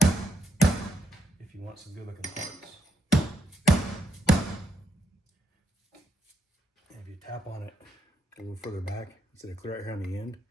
if you want some good looking parts. And if you tap on it a little further back, instead of clear out here on the end,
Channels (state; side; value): normal; both; correlation 0.77